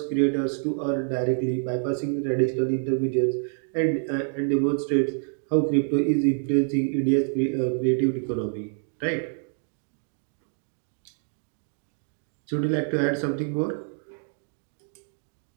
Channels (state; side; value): silent; left; 60 dB below the other